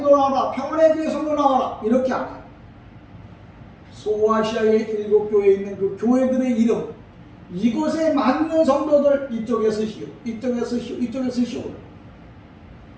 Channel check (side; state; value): both; identical; correlation 1.00